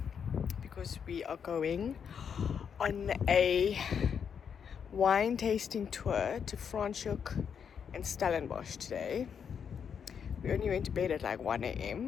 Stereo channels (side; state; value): right; quieter; 7.2 dB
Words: because we are going on a wine tasting tour to Franschhoek and Stellenbosch today. We only went to bed at like 1